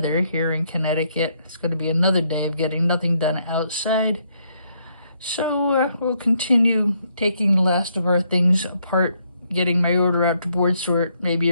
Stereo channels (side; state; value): both; inverted; correlation -0.73